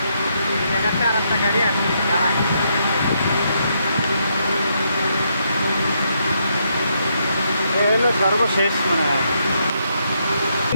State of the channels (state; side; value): inverted; both; correlation -0.77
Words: গাড়ি আছে হলো সর্বশেষ মানে